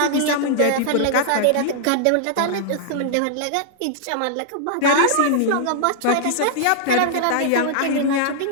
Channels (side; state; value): both; different; correlation -0.01